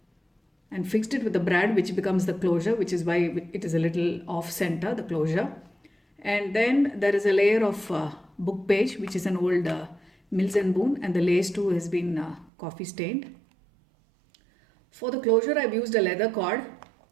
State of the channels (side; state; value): left; drops out; at 12.5 s